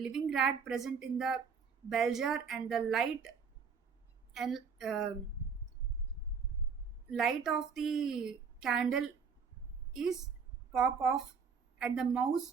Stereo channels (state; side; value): quieter; left; 5.9 dB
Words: rat present in the bell jar and the and light of the candle is pop off and the mouse